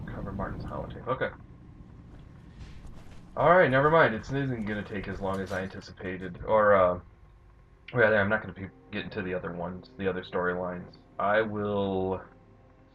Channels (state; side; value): identical; both; correlation 1.00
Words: Cover Martin's holotape. Okay. Alright, never mind. It isn't gonna take as long as I anticipated. Or, rather, I'm not gonna get into the other ones, the other storylines. I will